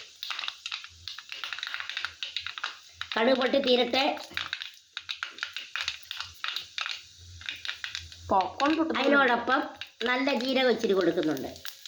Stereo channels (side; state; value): both; identical; correlation 1.00